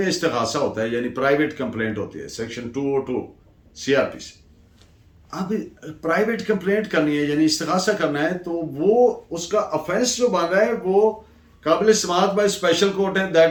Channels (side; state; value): both; identical; correlation 1.00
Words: इस्तिगासा होता है, यानी प्राइवेट कंप्लेंट होती है, सेक्शन 202 CRPC। अब प्राइवेट कंप्लेंट करनी है यानी इस्तिगासा करना है, तो वो उसका ऑफेंस जो बन रहा है वो काबिल समाअत बाय स्पेशल कोर्ट है,